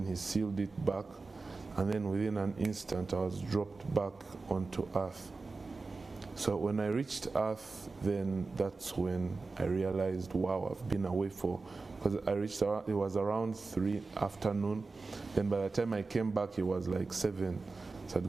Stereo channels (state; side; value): quieter; left; 3.9 dB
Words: he sealed it back. And then within an instant, I was dropped back onto earth. So when I reached earth, then that's when I realized, wow, I've been away because I reached, it was around 3 afternoon. Then by the time I came back, it was like 7. So I'd